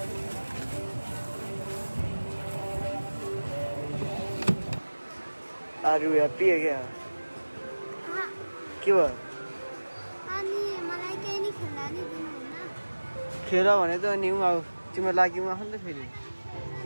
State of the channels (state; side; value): inverted; both; correlation -1.00